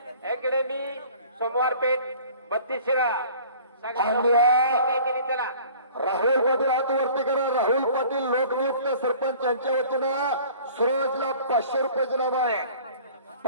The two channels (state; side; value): inverted; both; correlation -0.49